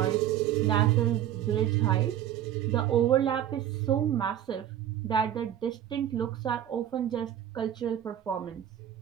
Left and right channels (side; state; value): left; quieter; 11.1 dB